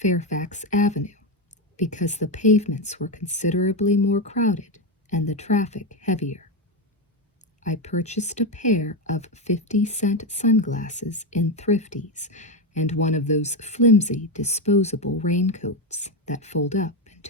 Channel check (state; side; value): normal; both; correlation 0.10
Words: Avenue, because the pavements were considerably more crowded and the traffic heavier. I purchased a pair of 50-cent sunglasses in Thrifties and one of those flimsy disposable raincoats that fold up